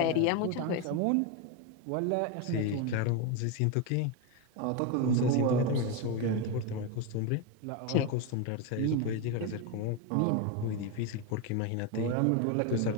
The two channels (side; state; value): both; different; correlation 0.03